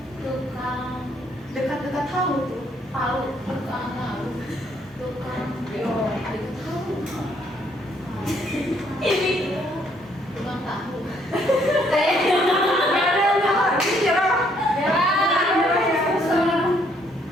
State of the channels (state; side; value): normal; both; correlation 0.68